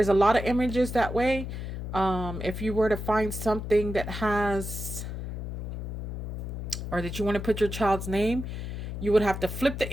a lot of images that way. If you were to find something that has, or that you want to put your child's name, you would have to flip the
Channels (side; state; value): left; noise; hum, 6 dB below the sound